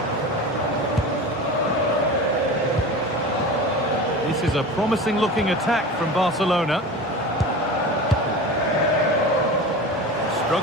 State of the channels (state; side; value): normal; both; correlation 0.32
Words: This is a promising looking attack from Barcelona.